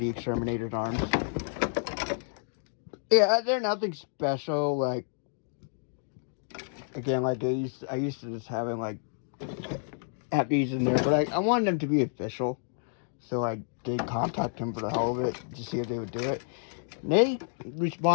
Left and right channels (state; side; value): silent; right; 58 dB below the other